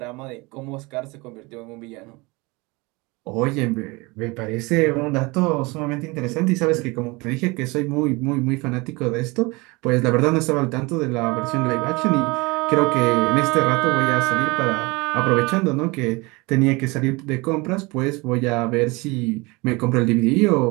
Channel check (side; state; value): left; quieter; 24.9 dB